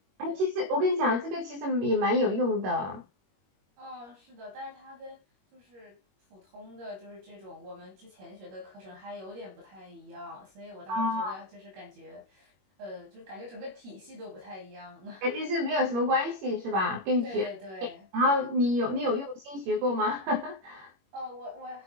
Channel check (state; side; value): late; left; 21 ms